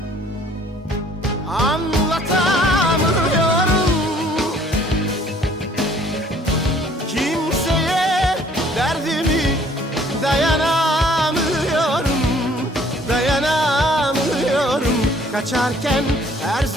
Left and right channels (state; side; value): normal; both; correlation 0.58